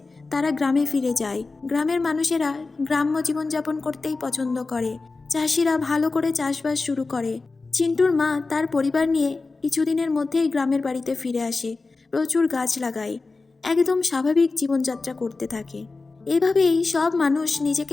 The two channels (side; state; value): right; quieter; 3.8 dB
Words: তারা গ্রামে ফিরে যায়। গ্রামের মানুষেরা গ্রাম্য জীবনযাপন করতেই পছন্দ করে। চাষিরা ভালো করে চাষবাস শুরু করে। চিন্টুর মা তার পরিবার নিয়ে কিছুদিনের মধ্যেই গ্রামের বাড়িতে ফিরে আসে। প্রচুর গাছ লাগায়, একদম স্বাভাবিক জীবনযাত্রা করতে থাকে। এভাবেই সব মানুষ